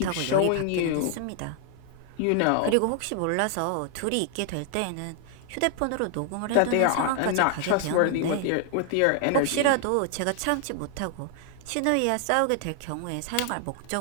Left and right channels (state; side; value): different; both; correlation 0.00